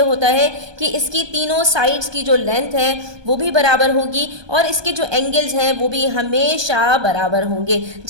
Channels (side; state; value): left; late; 1.2 ms